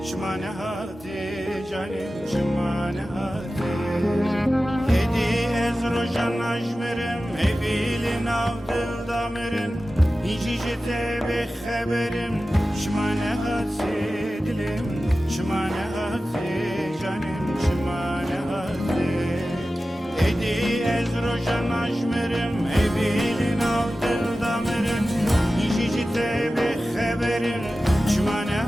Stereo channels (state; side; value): normal; both; correlation 0.95